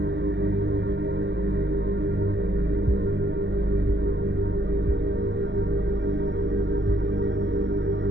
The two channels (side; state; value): left; late; 0.53 ms